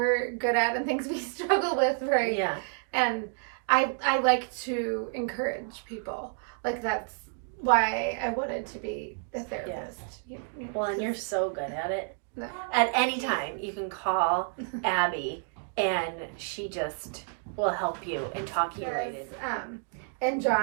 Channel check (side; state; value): left; silent; 58 dB below the other